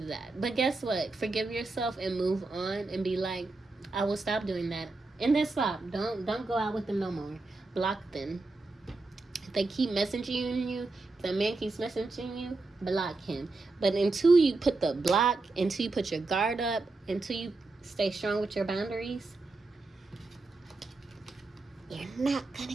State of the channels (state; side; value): quieter; left; 3.4 dB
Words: did that. But guess what? Forgive yourself and move on and be like, I will stop doing that. And then stop. Don't go out with them no more. Block them. If they keep messaging you, if the man keeps messaging you, block him. But until you put the block, until you put your guard up, until you stay strong with your boundaries, you're not